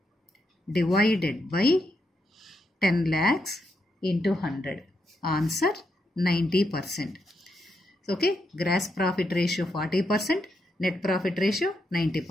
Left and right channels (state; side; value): normal; both; correlation 0.81